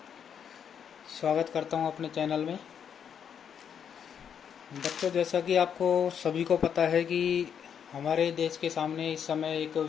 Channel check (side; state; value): right; quieter; 8.0 dB